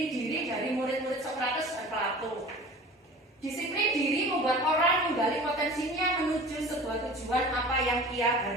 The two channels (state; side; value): normal; both; correlation 0.40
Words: diri dari murid-murid Sokrates dan Plato. Disiplin diri membuat orang menggali potensinya menuju sebuah tujuan apa yang ia